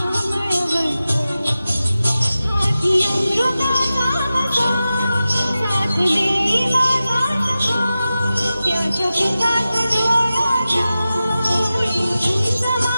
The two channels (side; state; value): both; inverted; correlation -0.94